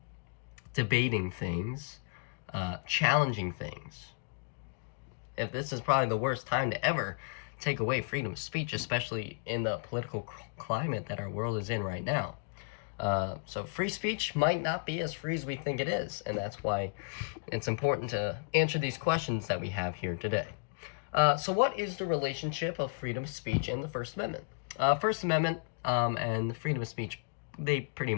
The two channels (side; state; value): right; quieter; 39.4 dB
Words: debating things, challenging things. If this is probably the worst time to ever take away freedom of speech, especially in the political climate that our world is in right now. So free speech might not be as free as we think it is, and that's why it's important to answer these questions that we have here today. So what is the relationship of freedom of speech and the First Amendment? First Amendment and the freedom of speech, they pretty